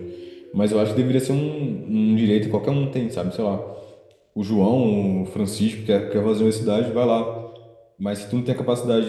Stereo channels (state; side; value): identical; both; correlation 1.00